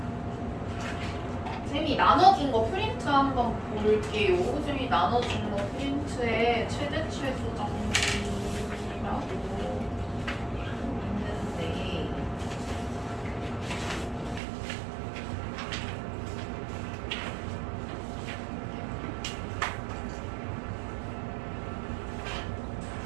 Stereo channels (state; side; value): drops out; left; at 14.4 s